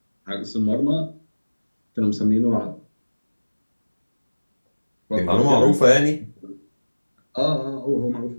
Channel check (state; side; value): inverted; both; correlation -1.00